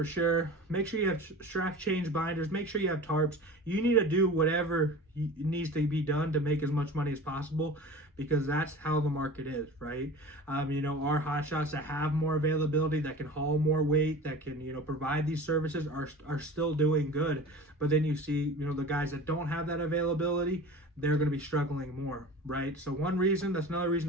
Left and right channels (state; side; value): normal; both; correlation 0.37